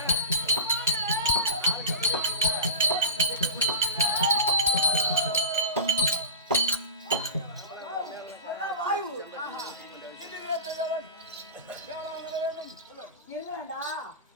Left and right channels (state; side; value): inverted; both; correlation -0.31